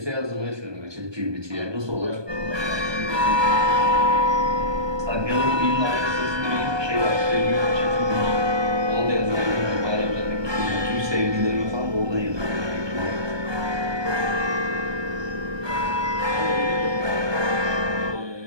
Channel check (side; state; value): left; late; 1.2 ms